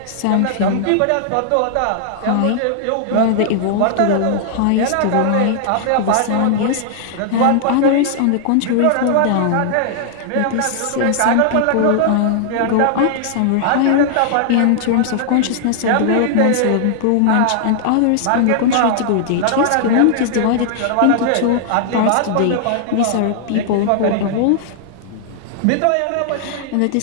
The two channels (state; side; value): different; both; correlation -0.01